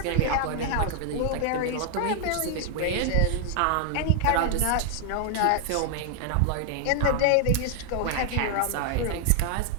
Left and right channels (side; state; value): both; different; correlation 0.00